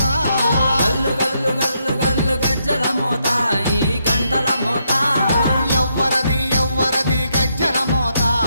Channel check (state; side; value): inverted; both; correlation -0.78